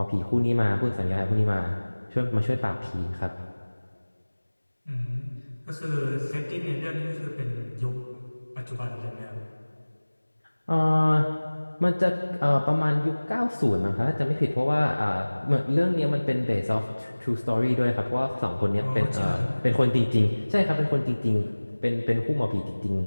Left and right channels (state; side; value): inverted; both; correlation -1.00